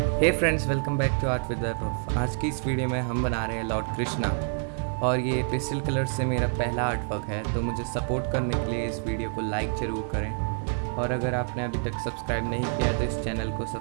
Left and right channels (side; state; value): left; silent; 59 dB below the other